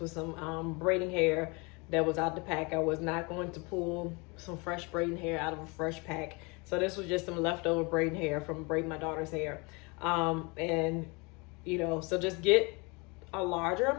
was some braiding hair that was out the pack. I was not going to pull some fresh braiding hair out of a fresh pack. So this was just some leftover braiding hair from braiding my daughter's hair. And you know, so just get a larger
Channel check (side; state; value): right; quieter; 28.8 dB